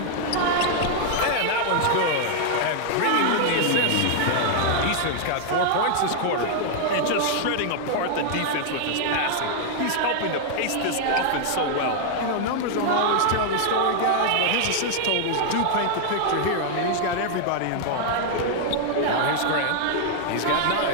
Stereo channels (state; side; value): different; both; correlation 0.00